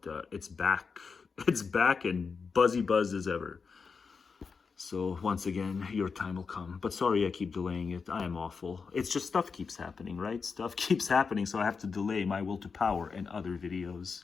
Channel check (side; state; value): right; quieter; 5.2 dB